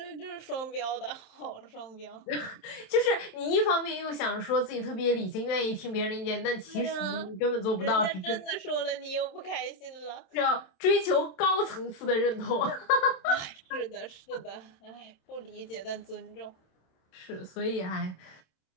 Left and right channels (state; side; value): late; right; 27 ms